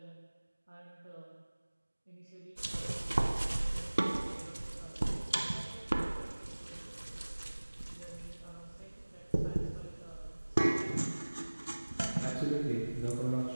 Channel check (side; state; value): both; inverted; correlation -1.00